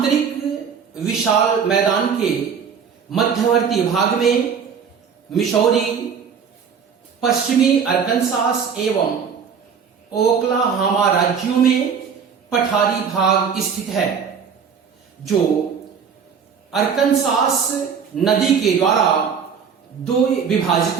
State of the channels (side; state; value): left; quieter; 6.7 dB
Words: विशाल मैदान के मध्यवर्ती भाग में मिसौरी, पश्चिमी अरकानसास एवं ओक्लाहोमा राज्यों में पठारी भाग स्थित है। जो अरकनसास नदी के द्वारा दो